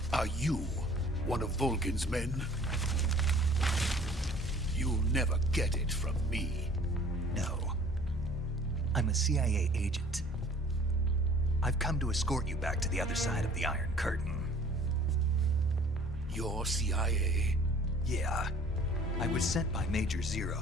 Are you one of Volgin's men? You'll never get it from me. No. I'm a CIA agent. I've come to escort you back to the other side of the Iron Curtain. You're CIA? Yeah. I was sent by Major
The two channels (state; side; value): normal; both; correlation 0.51